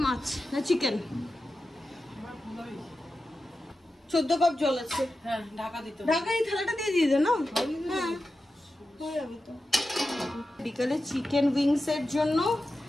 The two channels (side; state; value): both; normal; correlation 0.92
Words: মাছ না চিকেন? 14 কাপ জল আছে। হ্যাঁ ঢাকা দিতে হবে। ঢাকা এই থালাটা দিয়ে দিয়ে দে না। হ্যাঁ হয়ে যাবে তো। বিকালে চিকেন উইংস এর জন্য